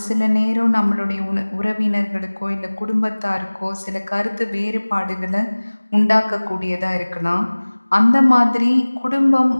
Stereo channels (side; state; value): both; inverted; correlation -1.00